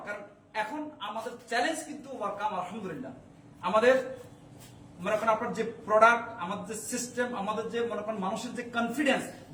কারণ এখন আমাদের চ্যালেঞ্জ কিন্তু ওয়ার্কাম আলহামদুলিল্লাহ। আমাদের মনে করেন আপনার যে প্রোডাক্ট, আমাদের যে সিস্টেম, আমাদের যে মনে করেন মানুষের যে কনফিডেন্স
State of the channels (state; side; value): identical; both; correlation 1.00